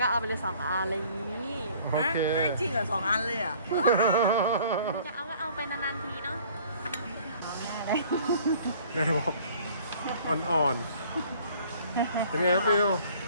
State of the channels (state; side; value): inverted; both; correlation -0.54